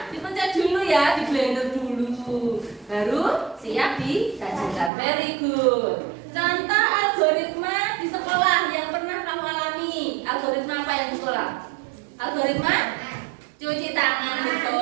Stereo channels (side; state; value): left; drops out; at 4.9 s